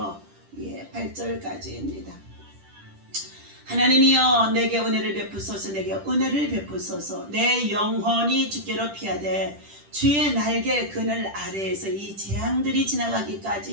8절까지입니다. 하나님이여 내게 은혜를 베푸소서. 내게 은혜를 베푸소서. 내 영혼이 주께로 피하되 주의 날개 그늘 아래에서 이 재앙들이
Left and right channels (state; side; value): late; left; 10 ms